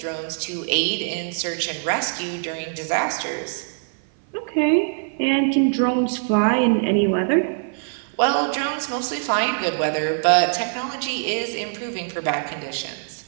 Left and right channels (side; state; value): left; silent; 55 dB below the other